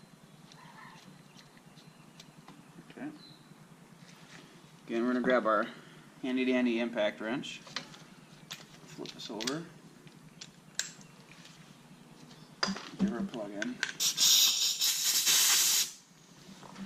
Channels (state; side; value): identical; both; correlation 1.00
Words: Okay. Again, we're going to grab our handy dandy impact wrench. Flip this over. Give her a plug in.